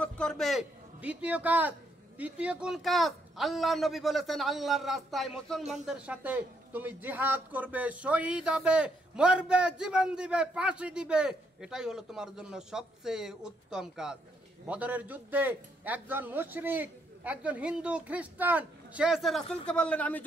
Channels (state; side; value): normal; both; correlation 0.74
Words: করবে। দ্বিতীয় কোন কাজ? আল্লাহর নবী বলেছেন আল্লাহর রাস্তায় মুসলমানদের সাথে তুমি জিহাদ করবে, শহীদ হবে, মরবে, জীবন দিবে, ফাঁসি দিবে, এটাই হলো তোমার জন্য সবচেয়ে উত্তম কাজ। বদরের যুদ্ধে একজন মুশরিক, একজন হিন্দু খ্রিস্টান, সে এসে রাসূলকে বললেন আমি